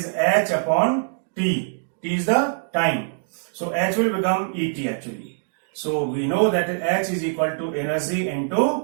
h upon t. T is the time. So h will become Et actually. So we know that h is equal to energy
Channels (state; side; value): silent; left; digital silence